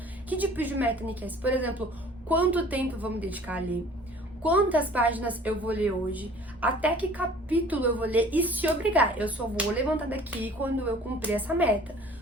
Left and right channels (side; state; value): both; normal; correlation 0.50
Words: Que tipo de meta, Nicasse? Por exemplo, quanto tempo eu vou me dedicar a ler? Quantas páginas eu vou ler hoje? Até que capítulo eu vou ler? E se obrigar, eu só vou levantar daqui quando eu cumprir essa meta.